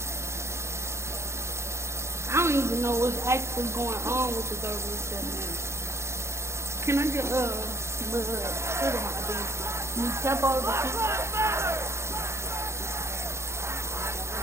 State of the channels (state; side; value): late; left; 0.13 ms